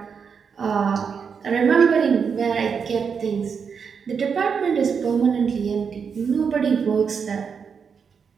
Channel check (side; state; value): left; quieter; 6.3 dB